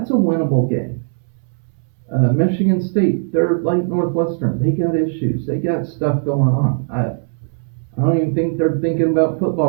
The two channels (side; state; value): left; silent; 67 dB below the other